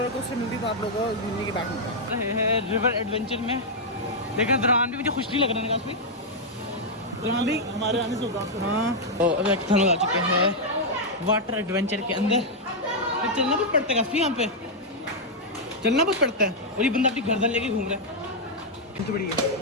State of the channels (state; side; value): normal; both; correlation -0.03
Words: कोस्टर मिलती तो आप लोगों को घूमने की बात मिलता है। रिवर एडवेंचर में लेकिन दौरान भी मुझे खुश नहीं लग रहा है काफी। दौरान भी हमारे आने से होगा। हाँ तो अभी हम लोग आ चुके हैं वाटर एडवेंचर के अंदर। तो चलना बहुत पड़ता है काफी, यहाँ पे चलना बहुत पड़ता है। और ये बंदा अपनी गर्दन लेके घूम रहा है, तो बड़ी